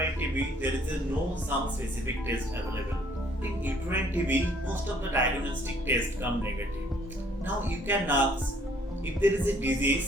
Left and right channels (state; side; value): normal; both; correlation 0.62